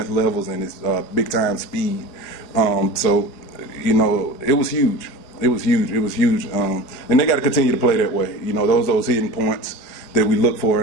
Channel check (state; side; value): late; right; 5.0 ms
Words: levels and his big-time speed. So, you know, it was huge. It was huge. It was huge. And they got to continue to play that way. You know, those hidden points that we look for